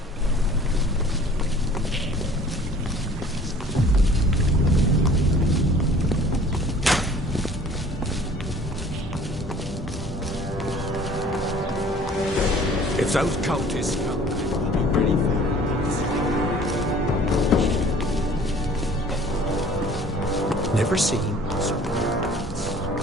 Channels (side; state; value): both; normal; correlation 0.50